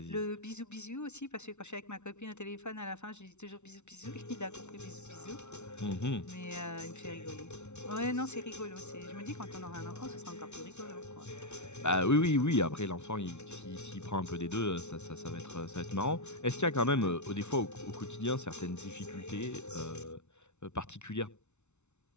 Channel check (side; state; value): right; late; 0.82 ms